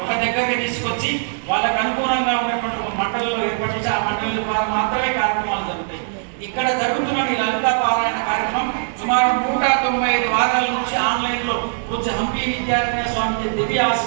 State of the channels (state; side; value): silent; left; digital silence